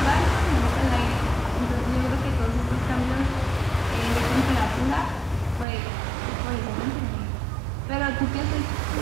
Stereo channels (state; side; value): drops out; left; at 5.7 s